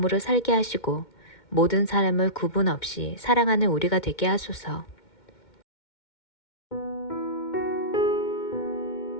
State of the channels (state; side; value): late; right; 2.1 ms